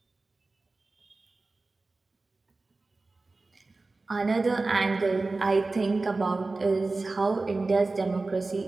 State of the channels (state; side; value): quieter; left; 3.5 dB